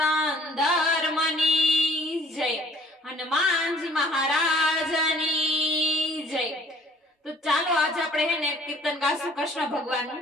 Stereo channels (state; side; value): normal; both; correlation 0.56